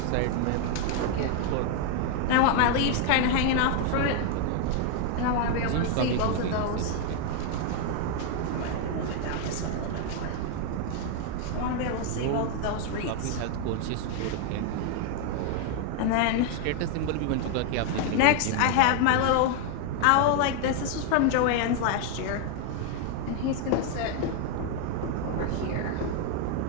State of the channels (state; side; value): different; both; correlation 0.00